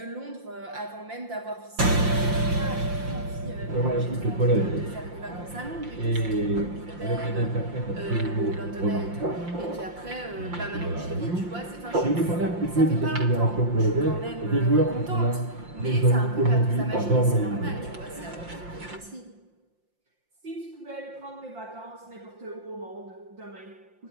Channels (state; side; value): late; left; 5.7 ms